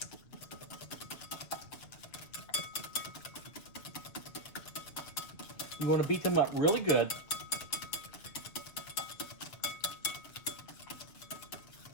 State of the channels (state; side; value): late; right; 7.3 ms